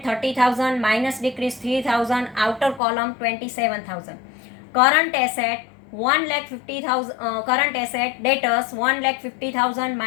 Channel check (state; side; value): drops out; right; at 2.8 s